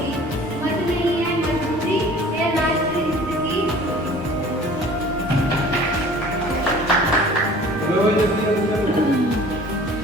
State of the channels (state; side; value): normal; both; correlation 0.47